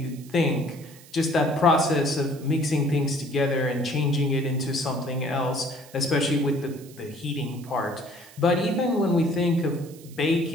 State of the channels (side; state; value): right; noise; hiss, 22 dB below the sound